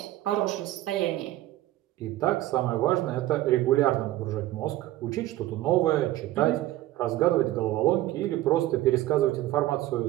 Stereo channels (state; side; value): quieter; left; 15.3 dB